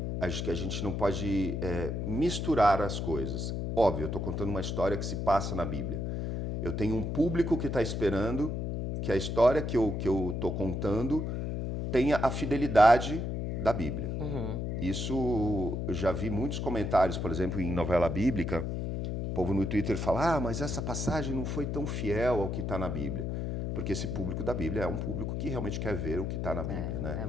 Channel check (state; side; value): noise; left; hum, 2 dB below the sound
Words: Acho que a gente não pode misturar as coisas. Óbvio, eu estou contando uma história que se passa na Bíblia. Eu tenho um público que está esperando que a história que eu estou contando tenha a fidelidade da Bíblia. Isso, eu já vi muitos comentários, por exemplo, em novela bíblica, o povo no Twitter fala, mas essa passagem não foi tão fiel ao que está na Bíblia. Porque esse público da Bíblia é um público que realmente quer ver o que está na Bíblia. Né? É